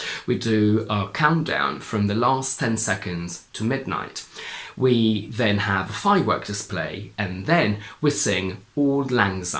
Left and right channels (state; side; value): identical; both; correlation 1.00